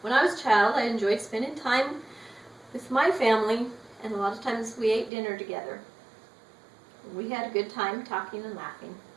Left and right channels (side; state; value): left; drops out; at 5.1 s